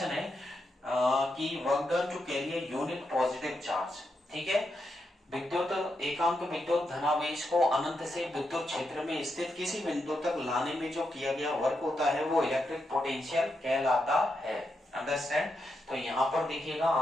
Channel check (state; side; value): normal; both; correlation 0.84